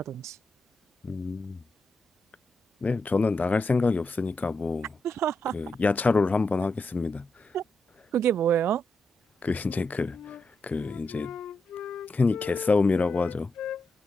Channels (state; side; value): normal; both; correlation 0.85